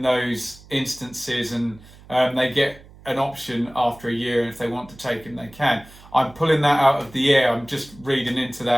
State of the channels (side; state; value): right; noise; hum, 22 dB below the sound